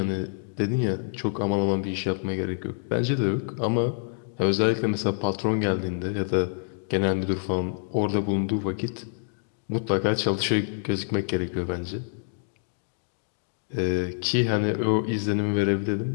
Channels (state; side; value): silent; right; digital silence